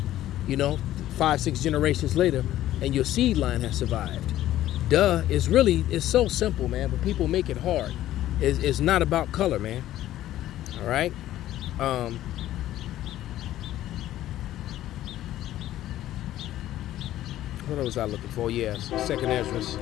5-6 generations later, and your seed line has survived? Duh. It's so simple, man, but people make it hard. It's not about color, man. All right. What was I looking for? Yes, 2nd Ezra.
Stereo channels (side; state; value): right; quieter; 13.6 dB